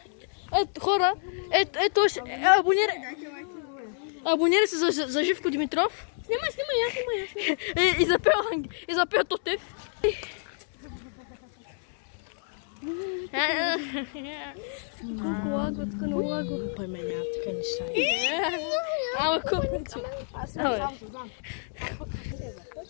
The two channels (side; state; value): right; silent; digital silence